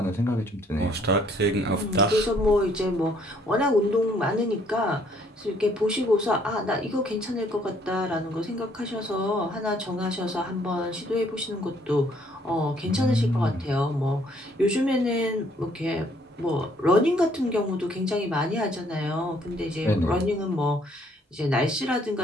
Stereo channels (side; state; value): both; normal; correlation 0.64